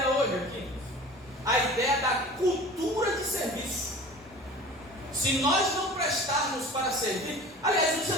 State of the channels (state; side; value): normal; both; correlation 0.41